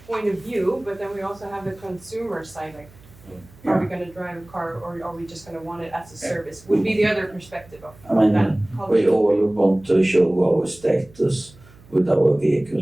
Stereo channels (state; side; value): noise; right; hum, 24 dB below the sound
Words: point of view, but then we also have the consumer side, like, are we going to drive a car, or are we just going to want it as a service? Would be the other perspective of that culture. We all want to show our status with our